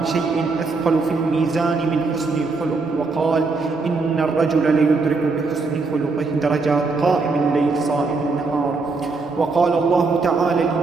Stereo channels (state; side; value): quieter; left; 4.0 dB